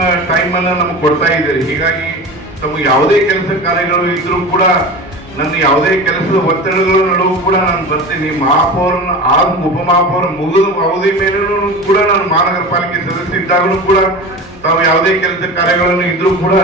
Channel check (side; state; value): both; normal; correlation 0.32